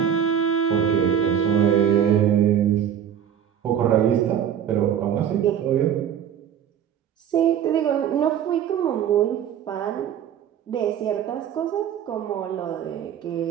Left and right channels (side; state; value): left; quieter; 9.1 dB